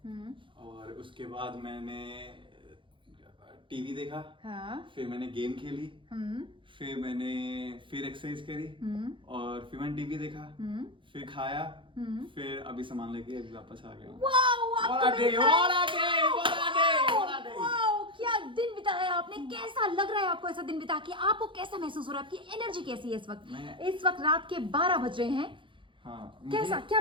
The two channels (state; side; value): late; left; 0.24 ms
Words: और उसके बाद मैंने टीवी देखा। हाँ। फिर मैंने गेम खेली। फिर मैंने एक्सरसाइज करी। और फिर मैंने टीवी देखा। फिर खाया। फिर अभी सामान लेके अभी वापस आ गया। क्या दिन बिताया आपने, कैसा लग रहा है आपको ऐसा दिन बिता के? आपको कैसा महसूस हो रहा है, आपकी एनर्जी कैसी है इस वक्त? इस वक्त रात के 12 बज रहे हैं। हाँ, कैसा, क्या